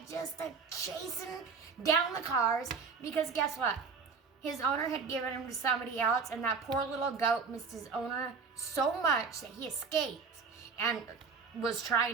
Just chasing down the cars, because guess what? His owner had given him to somebody else, and that poor little goat missed his owner so much that he escaped and was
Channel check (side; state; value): left; quieter; 5.3 dB